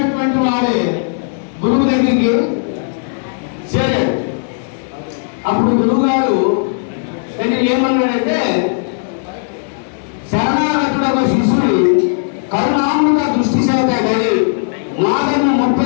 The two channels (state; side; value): silent; right; digital silence